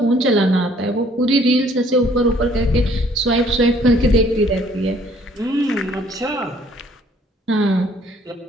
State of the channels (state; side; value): normal; both; correlation 0.60